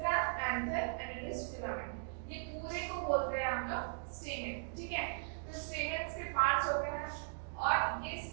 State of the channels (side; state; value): left; silent; digital silence